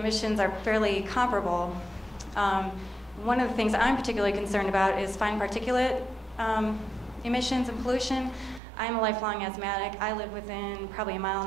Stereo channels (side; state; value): left; drops out; at 8.6 s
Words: are fairly comparable. One of the things I'm particularly concerned about is fine particulate emissions and pollution. I'm a lifelong asthmatic. I live within probably 1.5